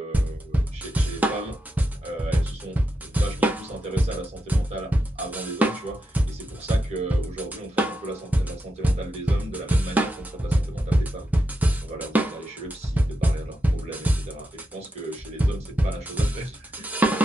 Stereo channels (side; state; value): both; normal; correlation 0.86